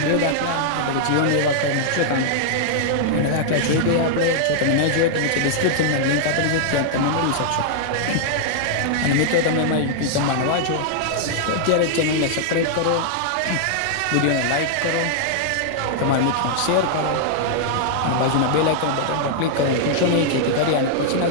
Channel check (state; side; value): different; both; correlation -0.01